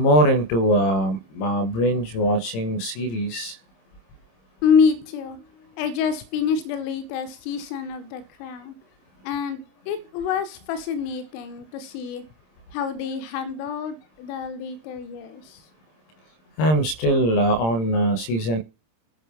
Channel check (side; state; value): right; late; 26 ms